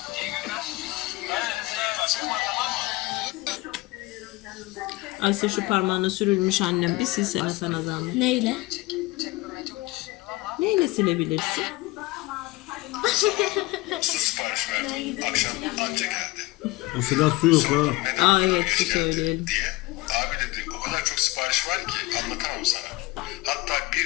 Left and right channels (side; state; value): right; quieter; 20.7 dB